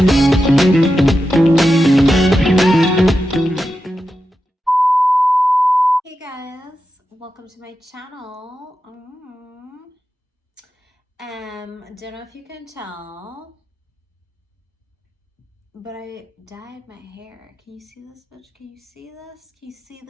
guys, welcome to my channel. Don't know if you can tell, but I dyed my hair. Can you see this, bitch? Can you see this? Can you see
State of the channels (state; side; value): normal; both; correlation 0.90